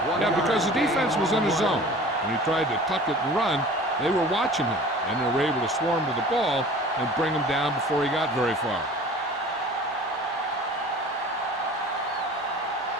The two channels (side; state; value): both; normal; correlation 0.43